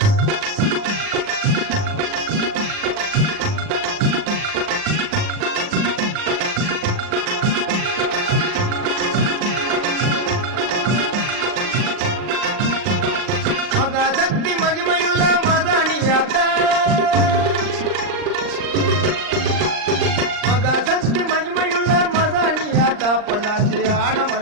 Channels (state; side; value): late; left; 39 ms